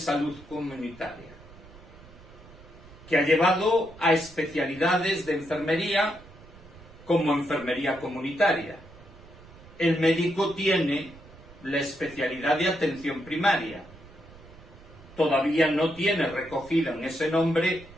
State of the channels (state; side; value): noise; right; rumble, 21 dB below the sound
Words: comunitaria, que ha llevado a especialidades de enfermería como enfermería comunitaria. El médico tiene la especialidad de atención primaria. Todavía no tiene recogida en ese nombre